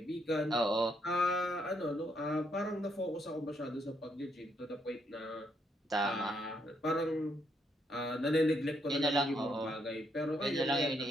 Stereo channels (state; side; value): normal; both; correlation 0.75